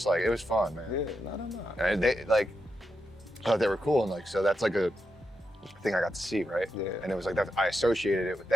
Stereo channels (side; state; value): both; normal; correlation 0.85